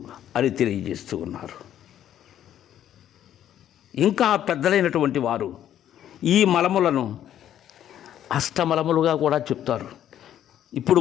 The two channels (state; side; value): quieter; right; 10.9 dB